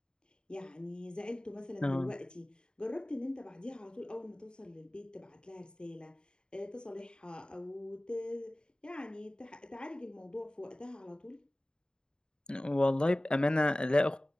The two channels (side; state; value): right; late; 0.049 ms